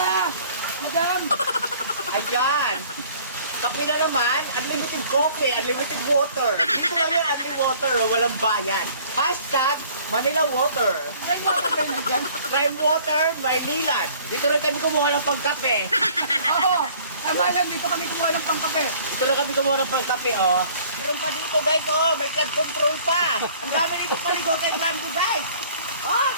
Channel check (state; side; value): inverted; both; correlation -0.54